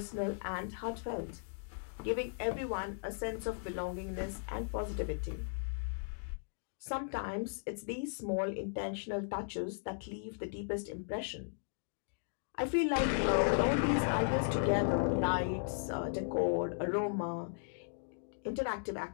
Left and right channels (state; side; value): silent; right; digital silence